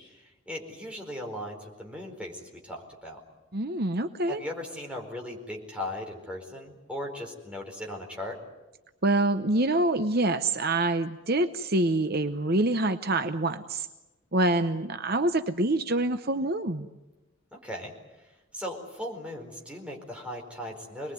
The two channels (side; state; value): both; normal; correlation 0.31